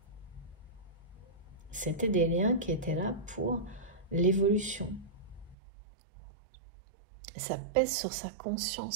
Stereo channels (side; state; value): left; drops out; at 5.6 s